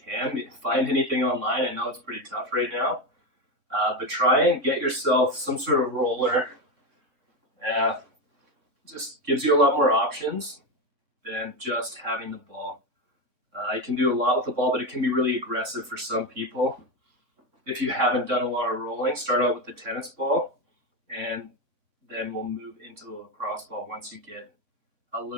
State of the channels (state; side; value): late; left; 3.5 ms